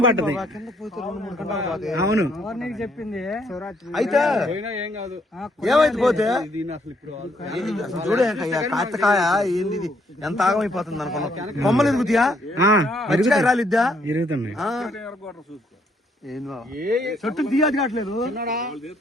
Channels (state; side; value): normal; both; correlation 0.70